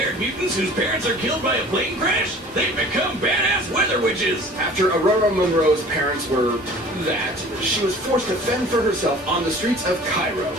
mutants whose parents are killed by a plane crash? They become badass weather witches. After Aurora Monroe's parents were that, she was forced to fend for herself on the streets of Cairo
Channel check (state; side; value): normal; both; correlation 0.46